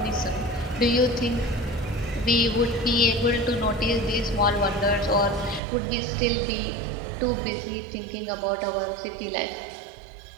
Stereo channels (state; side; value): drops out; left; at 5.6 s